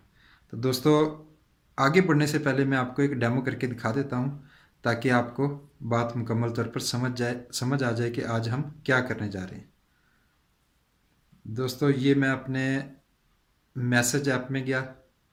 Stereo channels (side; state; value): both; identical; correlation 1.00